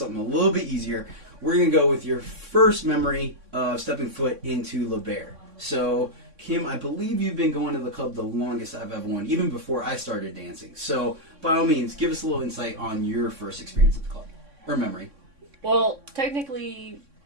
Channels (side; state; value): left; late; 3.6 ms